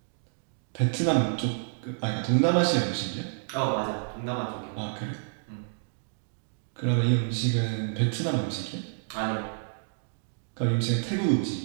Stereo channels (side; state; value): left; silent; digital silence